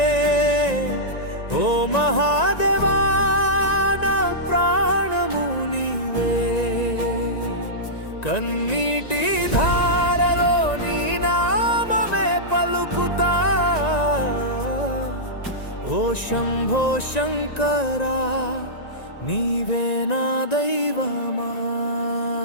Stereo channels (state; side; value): late; right; 1.9 ms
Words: ఓ మహాదేవా నా ప్రాణము నీవే, కన్నీటి ధారలో నీ నామమే పలుకుతా, ఓ శంభో శంకరా నీవే నా దైవమా.